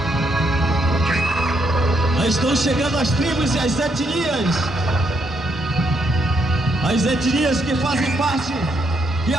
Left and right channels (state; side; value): normal; both; correlation 0.76